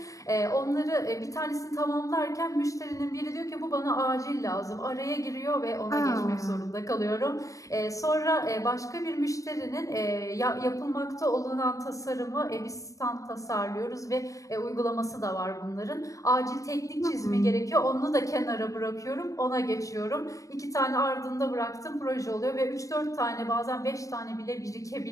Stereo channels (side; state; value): right; late; 0.16 ms